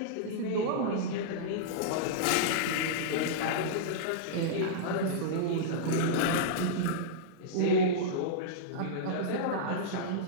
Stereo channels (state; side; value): different; both; correlation -0.03